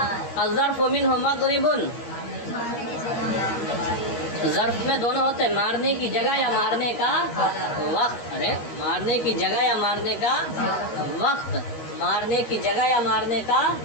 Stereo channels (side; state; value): right; late; 14 ms